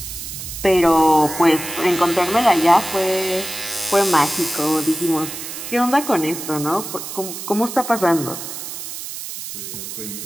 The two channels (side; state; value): right; noise; hiss, 9 dB below the sound